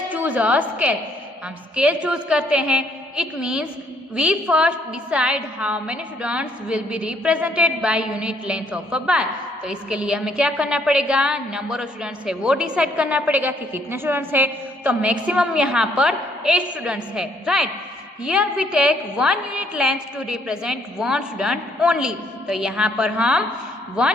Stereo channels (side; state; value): both; normal; correlation 0.68